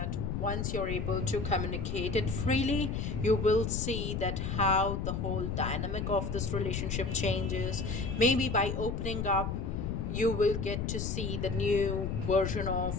once you're able to communicate it freely, you will see that how the whole dynamic of this relationship changes. Maybe by opening up, you will get to see the new version of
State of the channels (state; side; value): noise; left; rumble, 2 dB below the sound